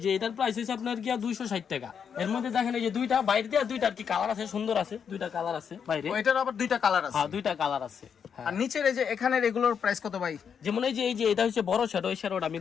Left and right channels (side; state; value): right; quieter; 7.2 dB